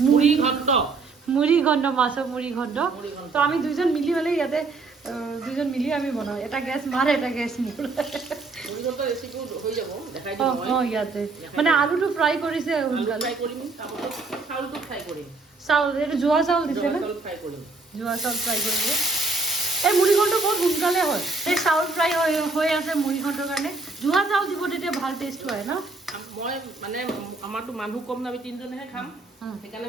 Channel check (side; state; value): left; quieter; 3.8 dB